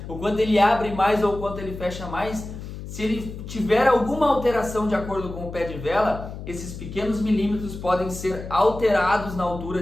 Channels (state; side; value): noise; left; hum, 10 dB below the sound